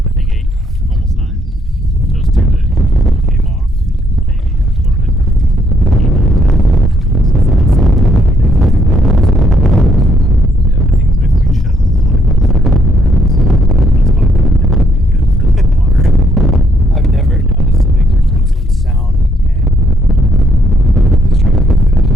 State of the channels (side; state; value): both; normal; correlation 0.73